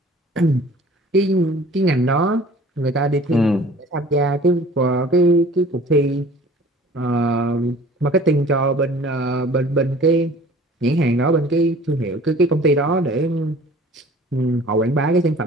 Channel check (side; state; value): both; normal; correlation 0.48